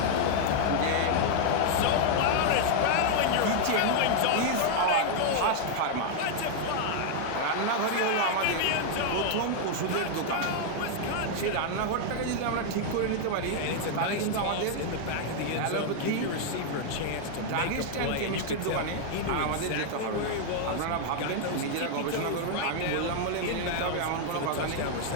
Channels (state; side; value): different; both; correlation 0.00